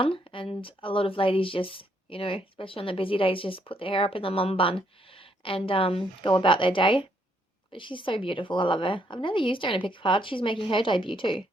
and a lot of ladies just, you know, especially on the busy days, just put their hair up in the mum bun and go about their day. But she's so beautiful. I love her. I've never used her in a pick card. She's making her debut too.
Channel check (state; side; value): normal; both; correlation 0.72